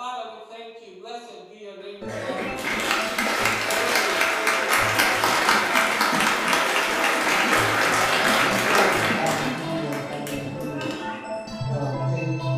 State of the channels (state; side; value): identical; both; correlation 1.00